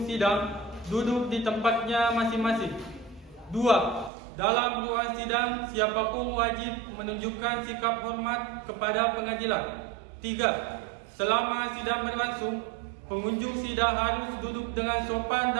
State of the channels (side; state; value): left; drops out; at 4.1 s